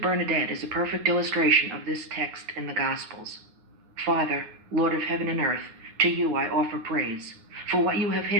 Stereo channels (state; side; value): late; left; 9.6 ms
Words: Bernadette is a perfect illustration of this text in the Gospels. Father, Lord of heaven and earth, to you I offer praise. For what you have